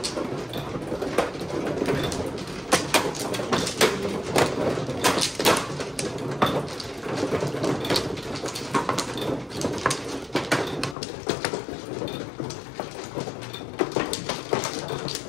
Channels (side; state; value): right; drops out; at 11.0 s